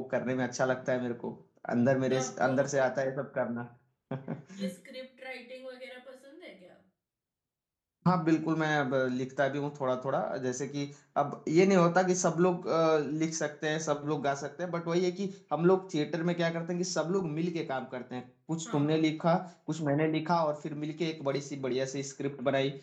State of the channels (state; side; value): identical; both; correlation 1.00